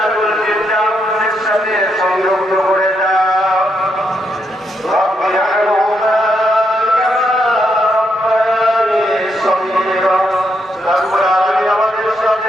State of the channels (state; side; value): normal; both; correlation 0.79